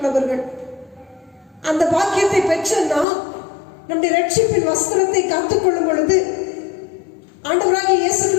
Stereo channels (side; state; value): right; drops out; at 3.1 s